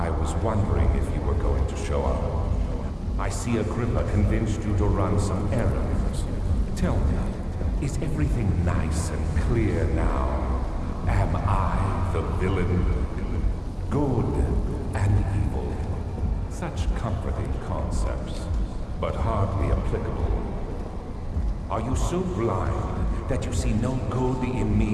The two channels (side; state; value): both; identical; correlation 1.00